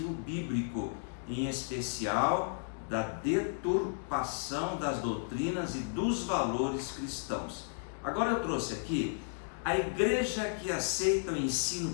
bíblico, em especial da deturpação das doutrinas e dos valores cristãos. Agora eu trouxe aqui a igreja que aceita o ensino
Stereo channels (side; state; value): right; silent; digital silence